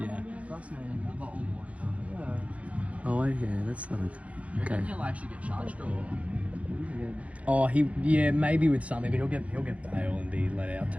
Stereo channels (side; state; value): left; late; 0.065 ms